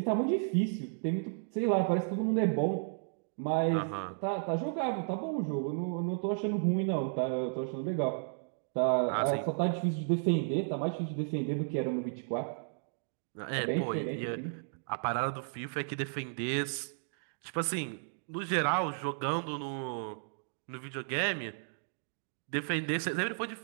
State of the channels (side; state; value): left; silent; digital silence